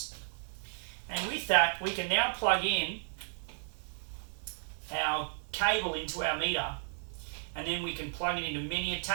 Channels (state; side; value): silent; left; 55 dB below the other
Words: And with that, we can now plug in our cable into our meter, and then we can plug it into many